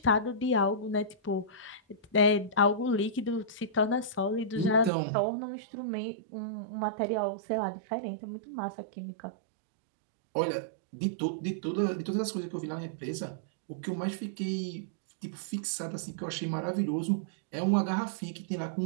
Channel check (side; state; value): left; drops out; at 4.9 s